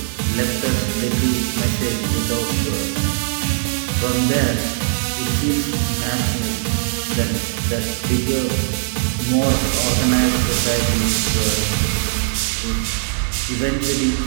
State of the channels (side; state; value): left; silent; digital silence